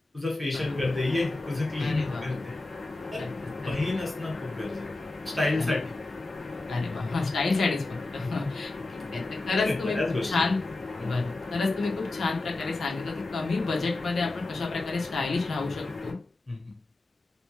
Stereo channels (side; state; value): right; quieter; 3.0 dB